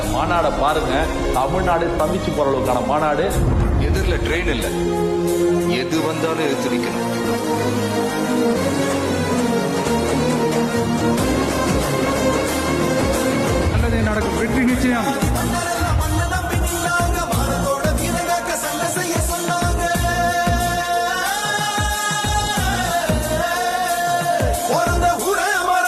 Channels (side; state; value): both; identical; correlation 1.00